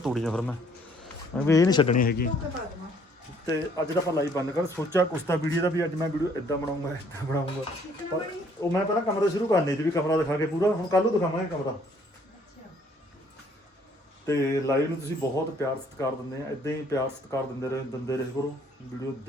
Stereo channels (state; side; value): normal; both; correlation 0.62